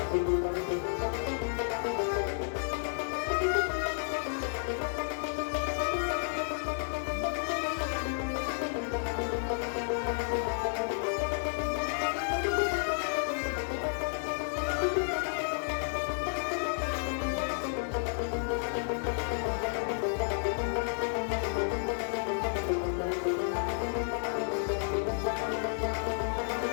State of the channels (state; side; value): silent; right; 57 dB below the other